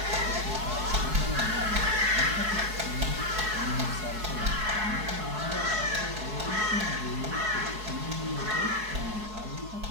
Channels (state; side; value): late; left; 4.7 ms